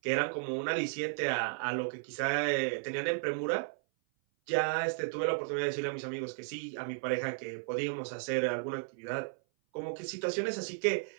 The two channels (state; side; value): silent; left; 55 dB below the other